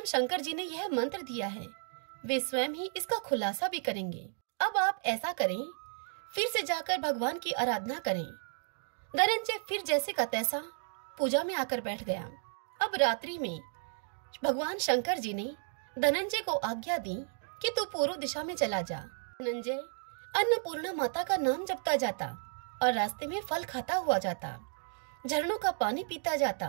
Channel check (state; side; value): silent; left; digital silence